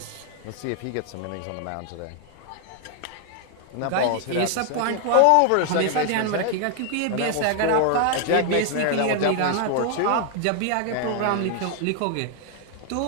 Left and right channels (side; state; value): both; different; correlation 0.00